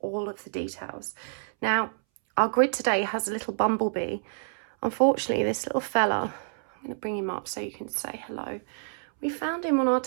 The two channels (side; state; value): left; silent; 59 dB below the other